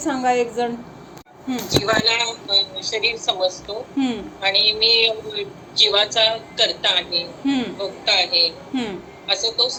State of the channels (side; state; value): both; identical; correlation 1.00